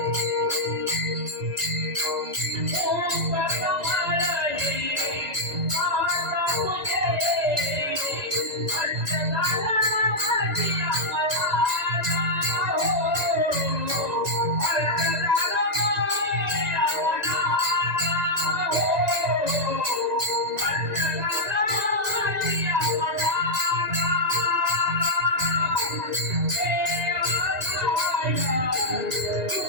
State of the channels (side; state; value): left; late; 1.9 ms